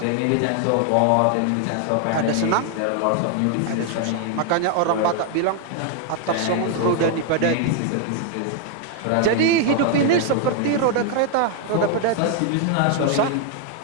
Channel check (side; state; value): both; different; correlation 0.00